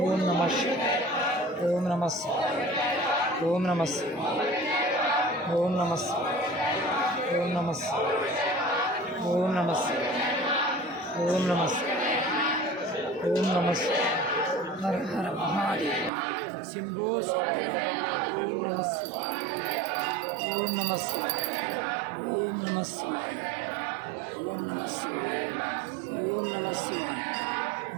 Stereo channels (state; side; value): drops out; left; at 16.1 s